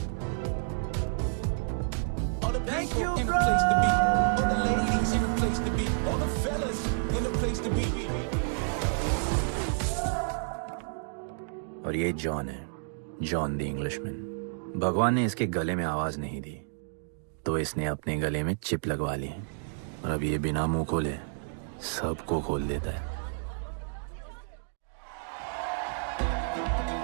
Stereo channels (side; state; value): left; silent; digital silence